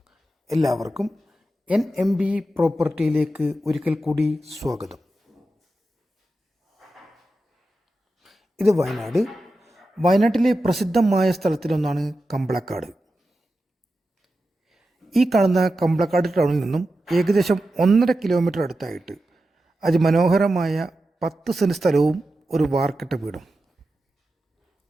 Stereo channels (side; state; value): both; normal; correlation 0.91